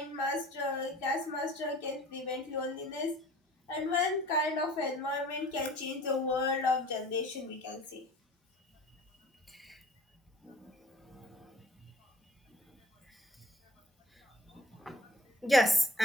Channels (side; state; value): both; normal; correlation 0.47